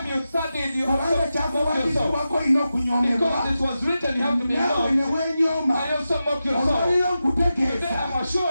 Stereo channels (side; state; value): both; inverted; correlation -0.91